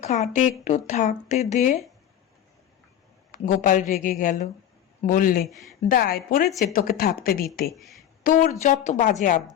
খাটে একটু থাকতে দে। গোপাল রেগে গেল, বললে, দায় পড়েছে তোকে থাকতে দিতে? তোর যত বাজে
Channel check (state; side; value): quieter; right; 10.6 dB